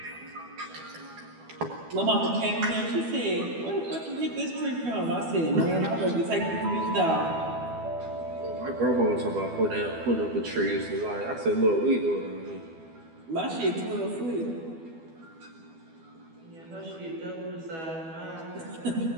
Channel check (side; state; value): left; late; 12 ms